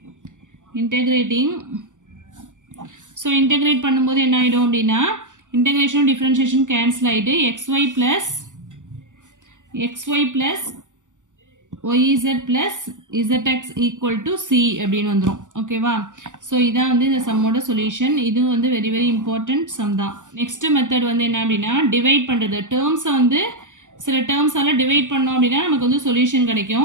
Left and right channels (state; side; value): late; left; 0.87 ms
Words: இன்டெகிரேட்டிங். ஸோ இன்டெகிரேட் பண்ணும்போது என்ன ஆகிடும் அப்படின்னா இன்டெகிரேஷனும் டிஃப்ரென்ஷியேஷன் கேன்சல் ஆகிட்டு xy plus yz plus zx equal to c அப்படின்னு வந்துடும். ஓகேவா, ஸோ இதான் வந்து இந்த சம்மோட சொல்யூஷன். இது வந்து வெரி வெரி இம்பார்ட்டன்ட் சம் தான். நெக்ஸ்ட் மெத்தட் வந்து என்ன அப்படின்னா டிவைட் பண்ணுறது. டேர்ம்ஸை வந்து சில டேர்ம்ஸால் டிவைட் பண்ணோம் அப்படின்னா நமக்கு வந்து சொல்யூஷன்